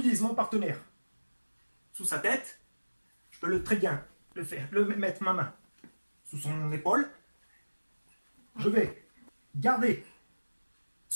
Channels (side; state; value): both; inverted; correlation -1.00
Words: mon partenaire sous sa tête. Je peux très bien mettre ma main sous son épaule. Je vais garder